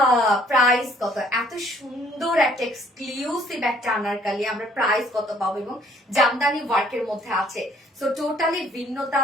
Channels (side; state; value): both; normal; correlation 0.62